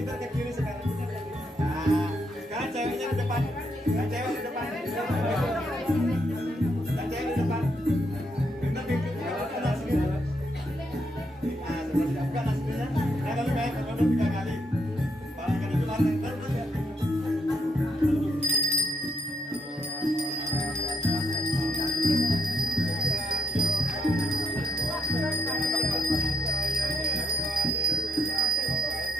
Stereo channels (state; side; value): normal; both; correlation 0.76